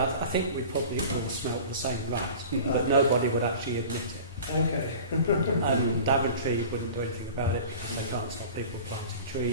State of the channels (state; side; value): inverted; both; correlation -0.39